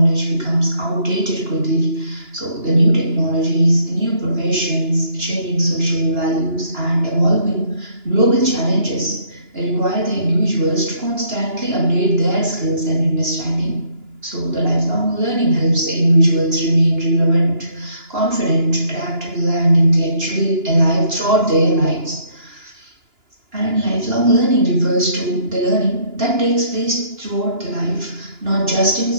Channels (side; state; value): left; late; 2.9 ms